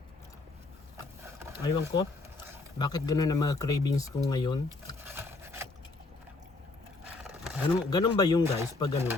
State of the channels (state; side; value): quieter; right; 3.4 dB